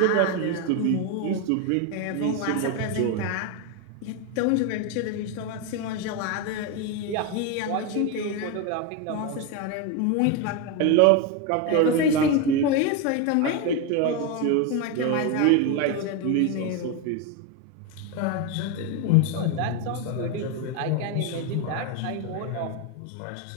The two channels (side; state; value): both; different; correlation 0.02